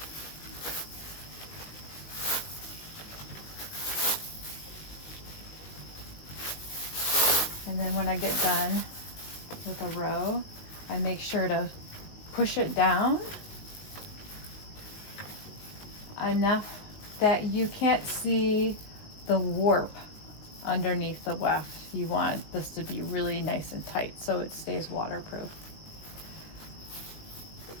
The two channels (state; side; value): late; right; 19 ms